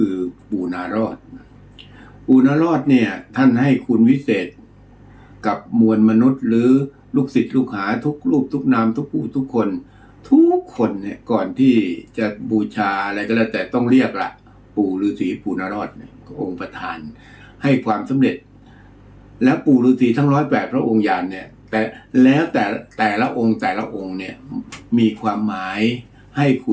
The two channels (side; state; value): both; identical; correlation 1.00